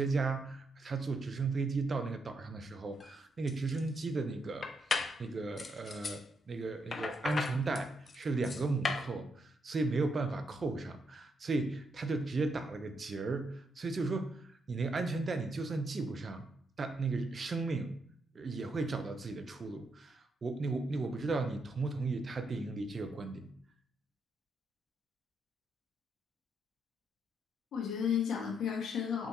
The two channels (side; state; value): both; normal; correlation 0.78